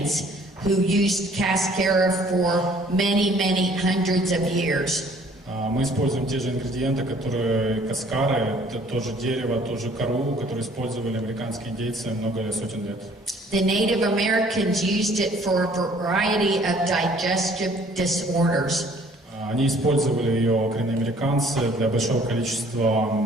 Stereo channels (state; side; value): normal; both; correlation 0.57